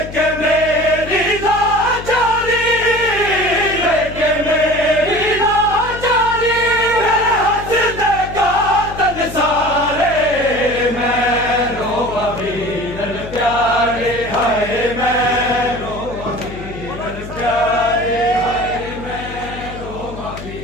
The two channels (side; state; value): left; noise; hum, 12 dB below the sound